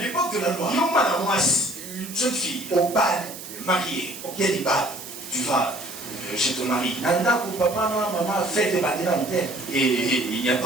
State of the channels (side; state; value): right; noise; hiss, 12 dB below the sound